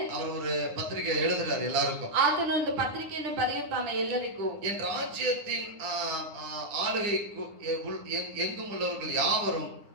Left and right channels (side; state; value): left; late; 9.7 ms